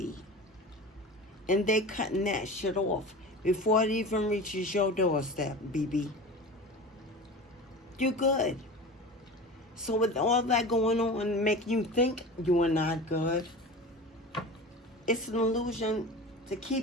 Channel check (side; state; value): both; normal; correlation 0.33